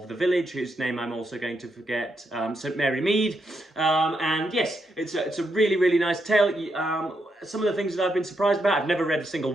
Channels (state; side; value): normal; both; correlation 0.81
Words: the village, whose name I'm also going to forget, St Mary Mead. And yes, it's a really, really nice tale. Some of the things that I've been surprised about, I've never read a single